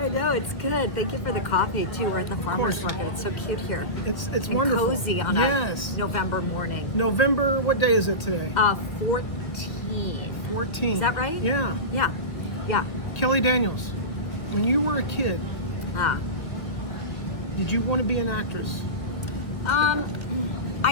know, it's good. Thank you for the coffee, too. We're at the farmer's market. It's so cute here. It's and wonderful. Cozy on a November morning. November, what day is it today? 14. 14. Is that right? Yeah. Yeah. Yeah. Keli Daniels, when you were a kid, did you want to be an actress?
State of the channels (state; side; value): late; right; 1.7 ms